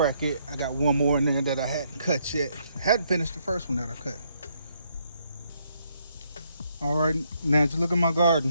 it. I got one more in there that I hadn't cut yet. I hadn't finished the first one that I cut. All right, now just look at my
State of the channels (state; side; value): inverted; both; correlation -0.73